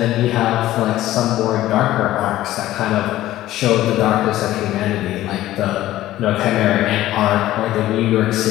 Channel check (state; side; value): quieter; right; 14.8 dB